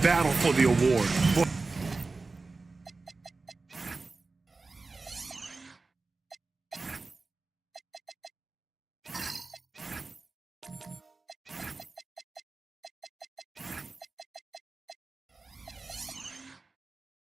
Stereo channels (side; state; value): left; quieter; 3.8 dB